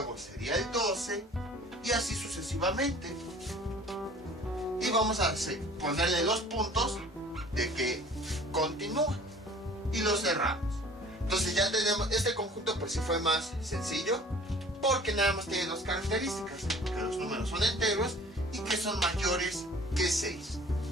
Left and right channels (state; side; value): normal; both; correlation 0.48